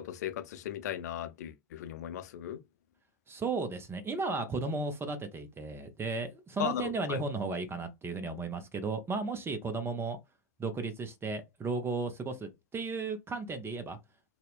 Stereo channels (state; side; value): normal; both; correlation 0.33